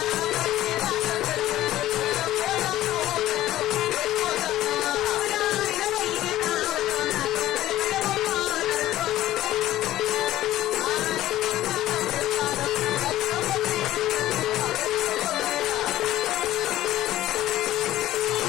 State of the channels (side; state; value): right; quieter; 14.4 dB